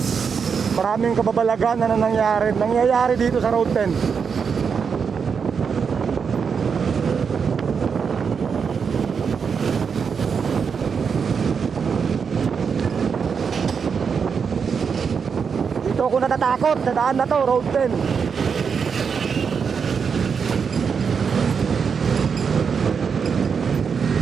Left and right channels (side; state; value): left; quieter; 6.2 dB